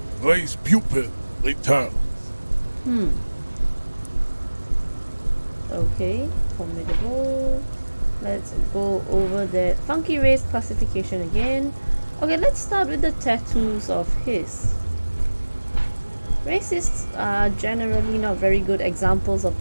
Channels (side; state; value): both; inverted; correlation -1.00